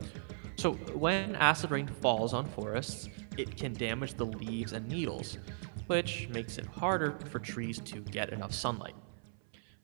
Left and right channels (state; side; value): silent; left; 53 dB below the other